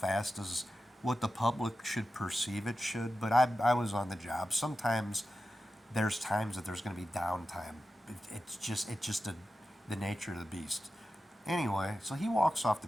as what the public should perceive it should. But I was on the job. Sometimes there's times that there's going to be downtime. It's just the nature of the beast. Anyway, so he walks off the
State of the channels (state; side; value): normal; both; correlation 0.92